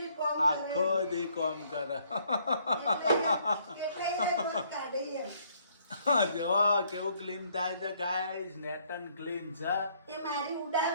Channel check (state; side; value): inverted; both; correlation -0.66